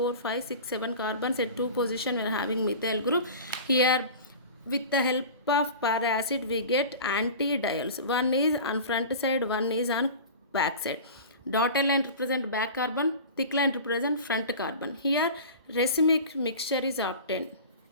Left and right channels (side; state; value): both; inverted; correlation -0.36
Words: 5, 6, 7 carbons at two position we are having methyl group. Here with the help of para-acid we get anti-diols. One is on front side, one is on back side. Dotted line represent back carbon, thick line represent front carbon. Here racemic mixture is obtained.